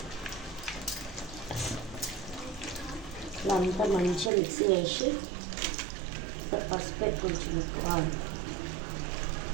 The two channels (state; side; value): drops out; left; at 4.3 s